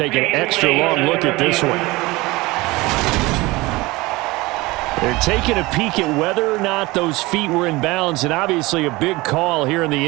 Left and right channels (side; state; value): left; quieter; 21.7 dB